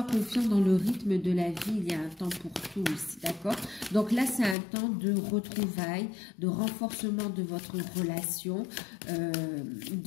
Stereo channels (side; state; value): right; drops out; at 4.5 s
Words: confiant dans le rythme de la vie, il y a un temps pour tout ici, d'accord? Donc là, c'est un temps de retrouvailles, de renforcement de votre relation,